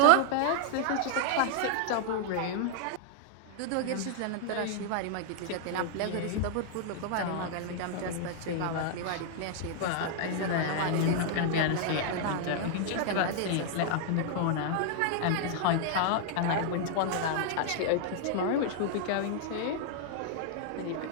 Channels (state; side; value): different; both; correlation 0.00